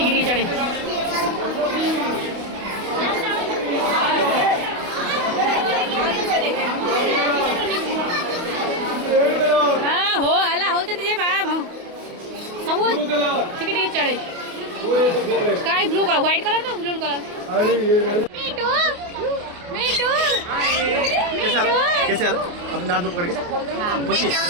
चढ़े हाँ हो हला हो सब ठीक चढ़े sky blue colour white colour तो ब्लू कलर कैसे आ रहा अपने नाम से पकड़ के पूछिए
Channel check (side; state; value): left; late; 28 ms